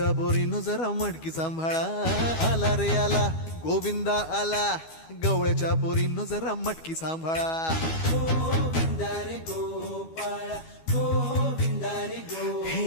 बोरीनं जरा मटकी सांभाळा आला रे आला गोविंद आला गवळ्याच्या बोरीनं जरा मटकी सांभाळा गोविंद रे गोपाळा गोविंद रे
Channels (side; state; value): right; late; 12 ms